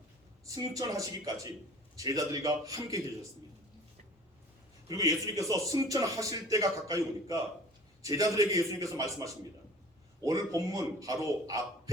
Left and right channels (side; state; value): both; normal; correlation 0.45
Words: 승천하시기까지 제자들과 함께 계셨습니다. 그리고 예수님께서 승천하실 때가 가까이 오니까 제자들에게 예수님께서 말씀하십니다. 오늘 본문 바로